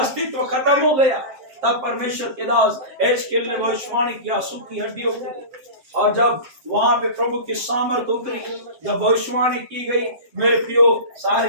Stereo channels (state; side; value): late; left; 7.6 ms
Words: खत्म हो गया। तब परमेश्वर के दास एजकेल ने भविष्यवाणी किया सूखी हड्डियों को, और जब वहां पे प्रभु की सामर्थ उतरी, जब भविष्यवाणी की गई, मेरे प्रियो